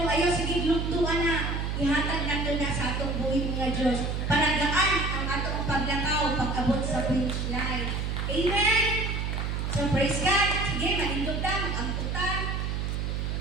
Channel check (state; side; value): noise; right; hum, 1 dB below the sound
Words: ayaw sige gluktuan na, ihatag na to na sa atong buhay mga Diyos. Palagaan ang atong paglakaw, pag-abot sa finish line. Amen? So praise God. Sige, malindog na, mag-amputan.